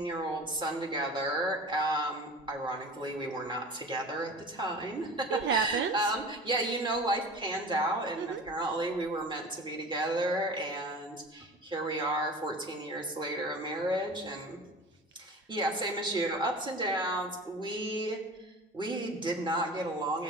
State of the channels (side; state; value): both; normal; correlation 0.38